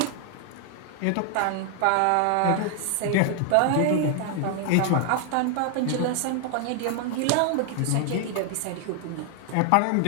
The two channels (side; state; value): both; different; correlation 0.00